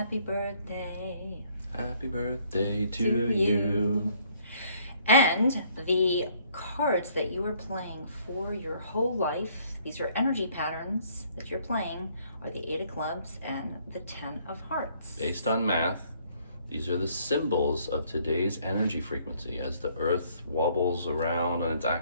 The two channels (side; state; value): both; inverted; correlation -0.64